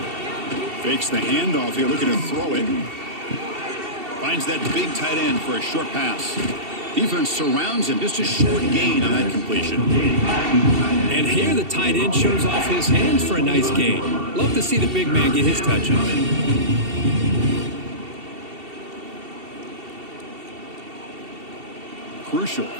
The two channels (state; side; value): late; left; 2.7 ms